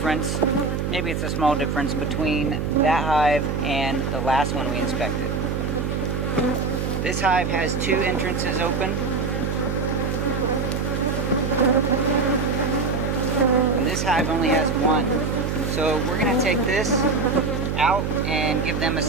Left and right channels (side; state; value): right; noise; hum, 1 dB below the sound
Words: maybe it's a small difference, between that hive and the last one we inspected. This hive has 2 entrances open. And this hive only has 1. So we're going to take this out and give them a